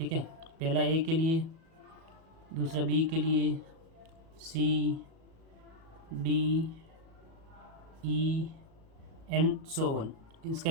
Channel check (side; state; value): left; late; 37 ms